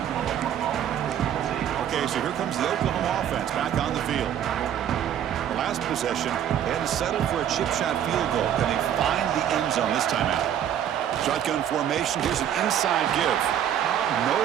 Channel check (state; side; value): quieter; left; 10.0 dB